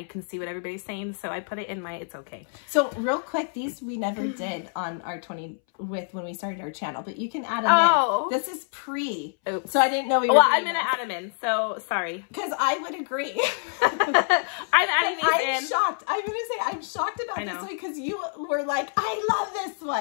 can see what everybody's saying. So I put it in my it's okay. So real quick, these we never did on our 20 with when we started our channel, but you can add them in. This is pre. Oops. So I didn't know we were. Well, I'm gonna add them in. So sorry. Because I would agree. I'm adding these in. I'm shocked. I'm gonna say I'm shocked about this one because you were like, I love this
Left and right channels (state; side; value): silent; right; 61 dB below the other